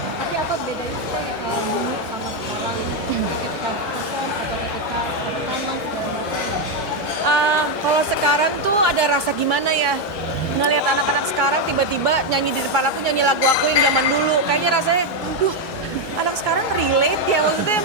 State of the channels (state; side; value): late; right; 1.1 ms